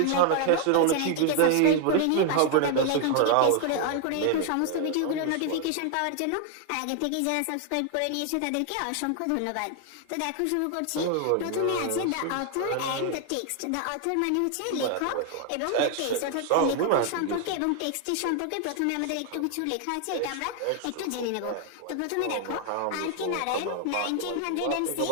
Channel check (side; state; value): both; different; correlation 0.00